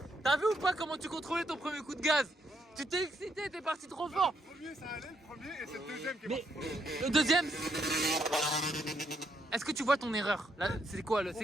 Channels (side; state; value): both; normal; correlation 0.76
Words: T'as vu ou pas comment tu contrôlais ton premier coup de gaz? Tu t'es excité, t'es parti trop fort! Le premier, ça allait, le premier, et c'est le deuxième qui est Mais parti. le deuxième... Est-ce que tu vois ton erreur? Là, c'est quoi le...